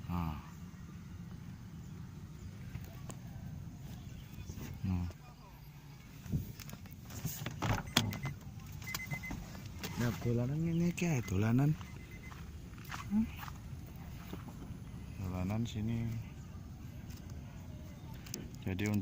Nah. Nah, dolanan ini kayak dolanan. Dolanan sini. Jadi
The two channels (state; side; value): identical; both; correlation 1.00